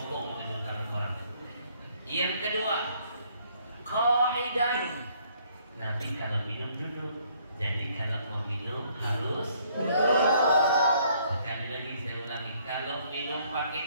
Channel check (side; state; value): both; inverted; correlation -0.65